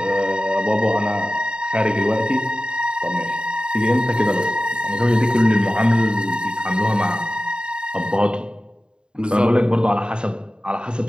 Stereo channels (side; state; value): left; late; 0.051 ms